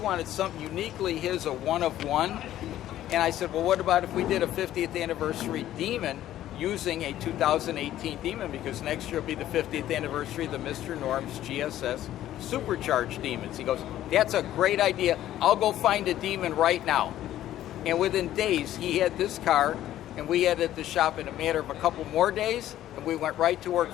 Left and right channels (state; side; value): quieter; right; 12.9 dB